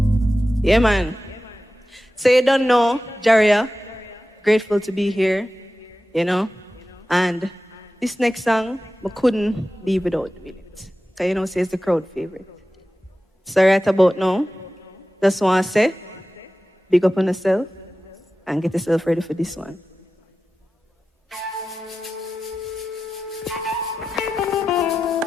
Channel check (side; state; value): both; normal; correlation 0.94